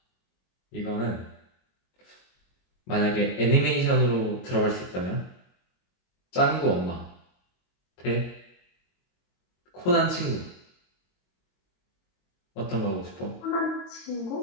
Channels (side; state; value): right; late; 22 ms